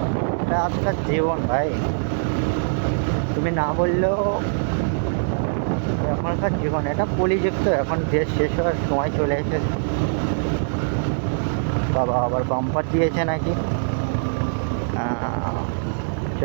এটা আজকাল জীবন ভাই, তুমি না বললেও এখনকার জীবন এটা পলিযুক্ত। এখন দেশ শেষ হওয়ার সময় চলে এসেছে। বাবা আবার বাম্পার দিয়েছে নাকি।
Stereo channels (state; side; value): silent; left; digital silence